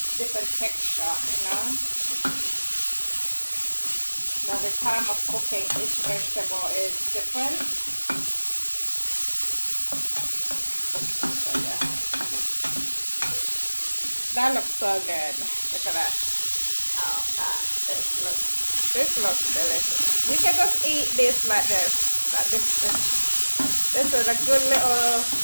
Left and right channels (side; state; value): both; inverted; correlation -1.00